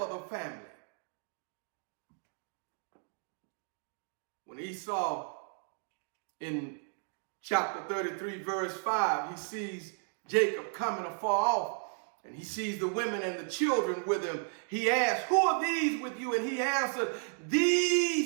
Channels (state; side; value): silent; left; 55 dB below the other